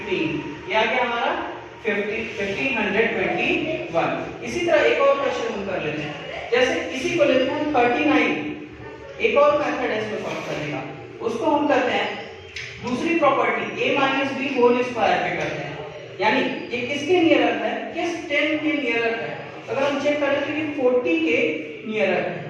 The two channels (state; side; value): identical; both; correlation 1.00